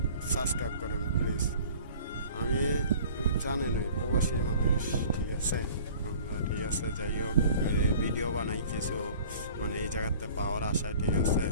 সাবস্ক্রাইব করুন প্লিজ। আমি জানেনই প্রবাসী মানুষ ঠিক আছে আমরা ঠিক আছে। যাই হোক, ভিডিও বানাই কিছু মানে এই জায়গাতে পাওয়ার আশায় ঠিক আছে।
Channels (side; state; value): both; inverted; correlation -0.46